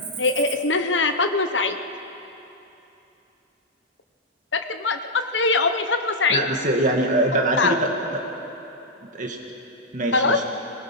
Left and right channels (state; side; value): normal; both; correlation -0.05